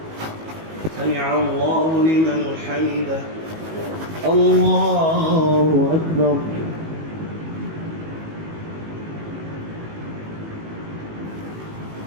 سمع الله لمن حمده الله أكبر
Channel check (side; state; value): left; late; 19 ms